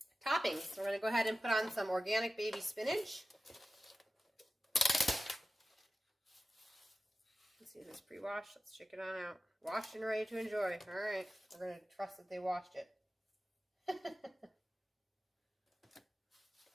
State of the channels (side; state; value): both; normal; correlation 0.94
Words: toppings. We're going to go ahead and put on some organic baby spinach. Let's see, this is pre-washed. Let's check it on out. Washed and ready to enjoy. All right. We're going to trust that they washed it.